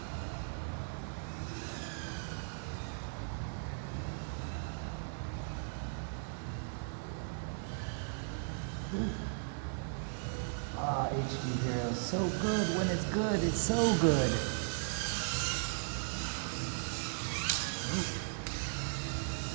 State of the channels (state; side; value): silent; left; 53 dB below the other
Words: Ah, HD Hero, so good. When it's good, it's so good.